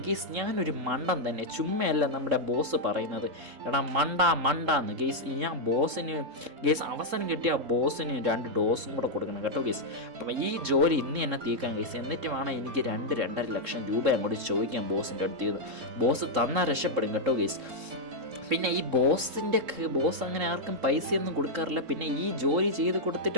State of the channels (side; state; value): left; late; 3.7 ms